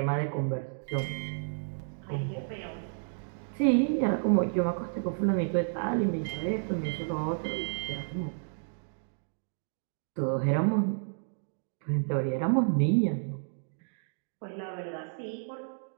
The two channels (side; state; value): left; silent; digital silence